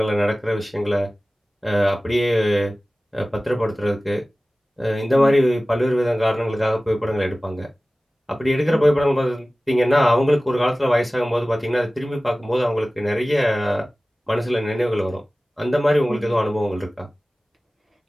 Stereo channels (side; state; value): both; normal; correlation 0.97